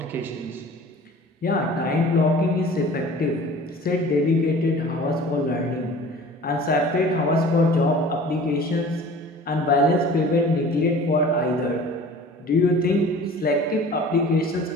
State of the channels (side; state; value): both; normal; correlation 0.44